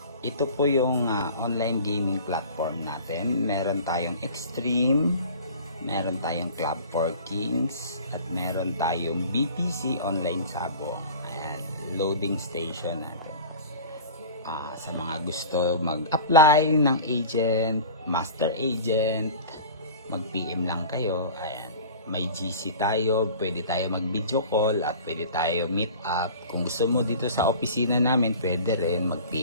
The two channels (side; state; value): both; inverted; correlation -0.40